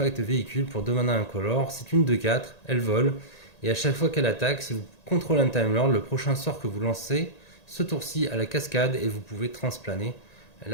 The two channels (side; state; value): right; late; 1.9 ms